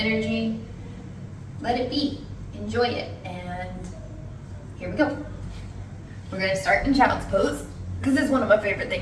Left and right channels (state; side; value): identical; both; correlation 1.00